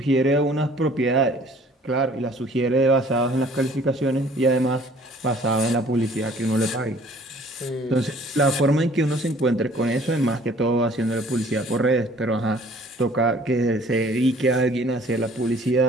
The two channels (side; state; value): both; normal; correlation 0.54